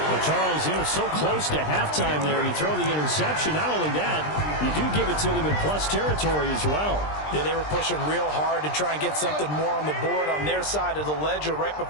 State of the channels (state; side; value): late; right; 20 ms